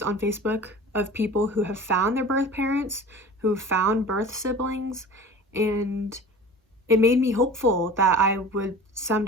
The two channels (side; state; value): both; normal; correlation 0.39